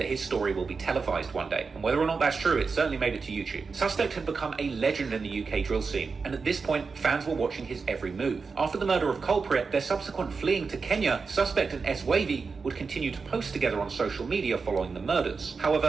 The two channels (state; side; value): quieter; left; 4.8 dB